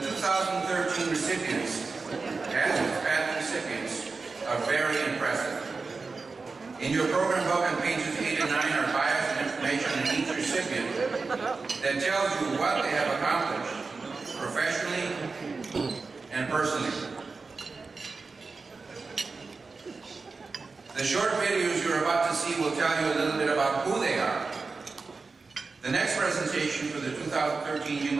recipients, as Hispanic recipients, are very impressive. In your program book on pages 8 and 9 are bios and information on each recipient that tells you what they have accomplished, professionally and personally. The short videos you're about to see will tell you a little bit about who they are. The next presentation for the 2013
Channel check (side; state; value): left; quieter; 4.2 dB